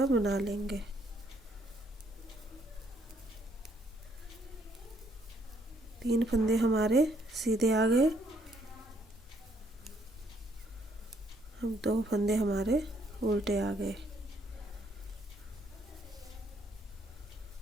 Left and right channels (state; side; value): normal; both; correlation 0.69